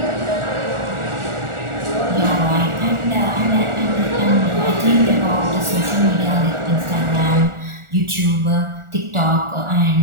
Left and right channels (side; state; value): left; late; 1.4 ms